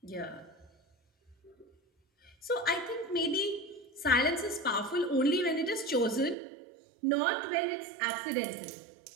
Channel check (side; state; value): left; drops out; at 6.4 s